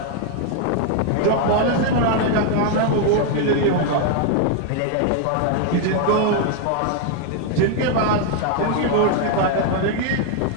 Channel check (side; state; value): both; different; correlation 0.00